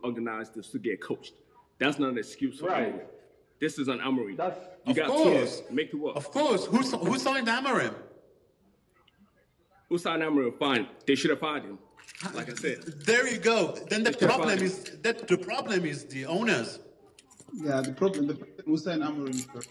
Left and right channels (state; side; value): identical; both; correlation 1.00